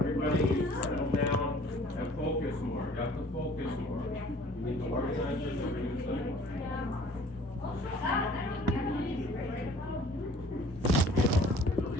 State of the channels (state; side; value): normal; both; correlation 0.52